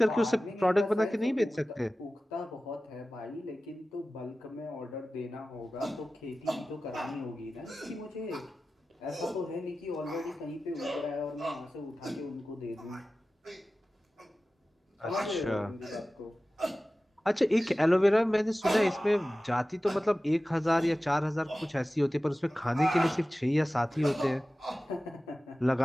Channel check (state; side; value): normal; both; correlation 0.96